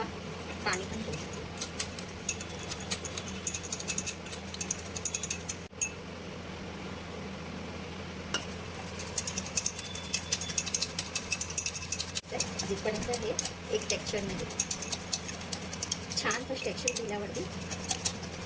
पाणी पण घेऊ शकतो. जिथपर्यंत हे एक टेक्स्चर नाही छानसं टेक्स्चर दिल्यावरती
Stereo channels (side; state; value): both; identical; correlation 1.00